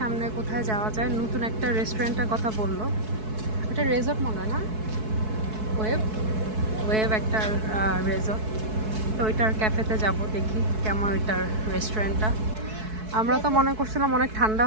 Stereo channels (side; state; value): left; late; 4.6 ms